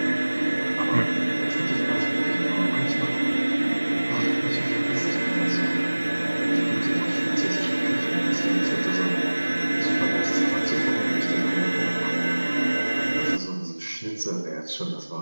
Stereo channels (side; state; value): both; inverted; correlation -1.00